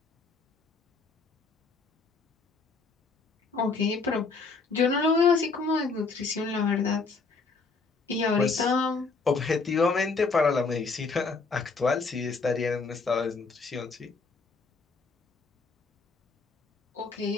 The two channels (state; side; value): quieter; right; 4.3 dB